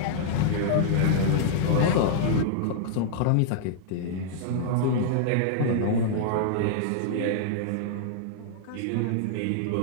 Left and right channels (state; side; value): different; both; correlation -0.01